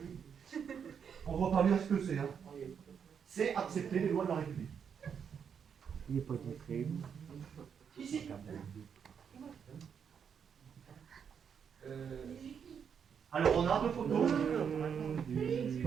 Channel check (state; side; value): quieter; left; 7.3 dB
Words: on voit pas bien ce que c'est. Hein. C'est accepter les lois de la République. Il n'est pas discret. Ici. Alors on a deux photos.